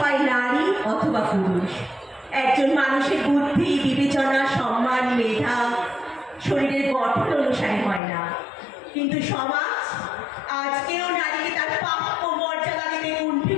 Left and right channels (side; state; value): right; drops out; at 8.0 s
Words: নারী অথবা পুরুষ। একজন মানুষের বুদ্ধি, বিবেচনা, সম্মান, মেধা শরীরের গঠন অনুসারে হয় না, কিন্তু সমাজ আজকেও নারীকে তার প্রাপ্য মর্যাদা দিতে